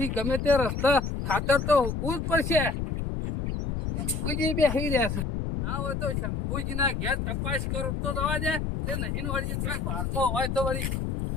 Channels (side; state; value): left; noise; rumble, 2 dB below the sound